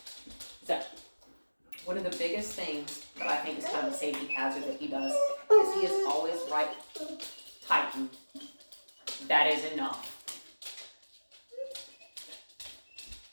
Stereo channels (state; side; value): inverted; both; correlation -1.00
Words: So, one of the biggest things that I think is kind of a safety hazard that he does is he is always right tightened. That is enough.